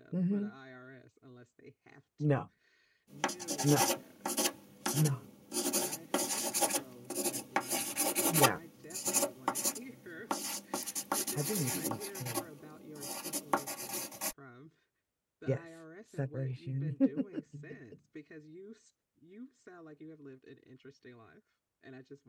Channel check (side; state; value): both; identical; correlation 1.00